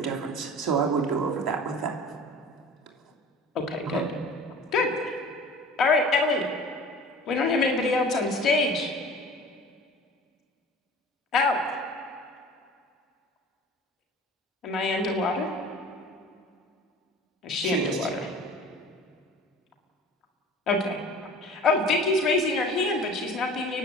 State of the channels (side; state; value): both; normal; correlation 0.41